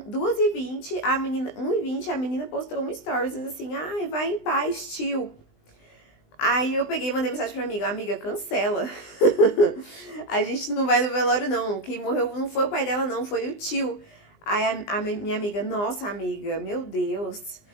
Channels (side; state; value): right; late; 20 ms